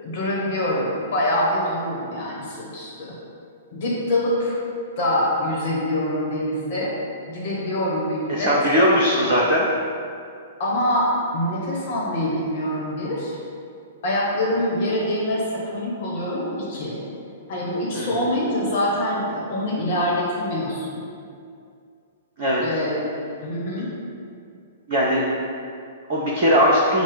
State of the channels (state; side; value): inverted; both; correlation -0.36